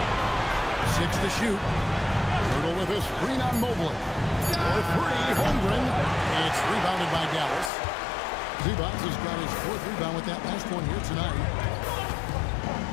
6 to shoot. Hurdle with a screen on Mobley. For 3, Holmgren. It's rebounded by Dallas. Zubac has got his 4th rebound with that last one here tonight.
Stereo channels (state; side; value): drops out; right; at 7.7 s